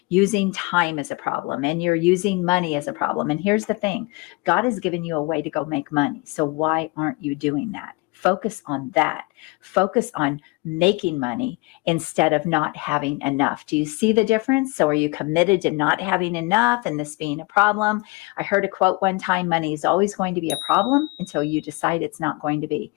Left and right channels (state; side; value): quieter; right; 25.8 dB